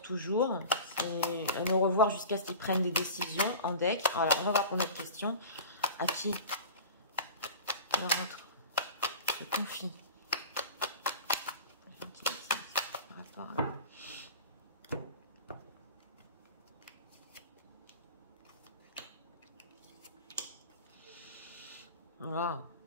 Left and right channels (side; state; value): both; inverted; correlation -0.35